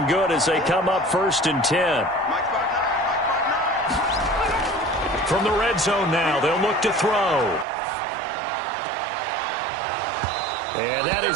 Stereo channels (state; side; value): drops out; left; at 7.7 s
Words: good as they come up 1st and 10. From the red zone now, they'll look to throw. And that